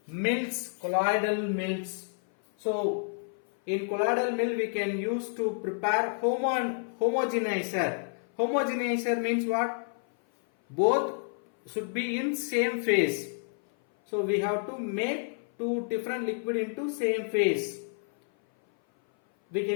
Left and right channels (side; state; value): right; silent; 56 dB below the other